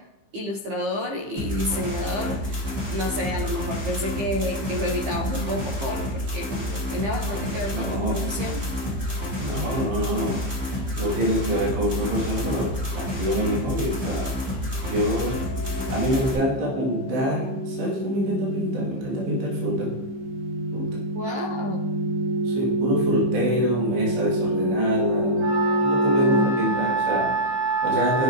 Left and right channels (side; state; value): left; late; 15 ms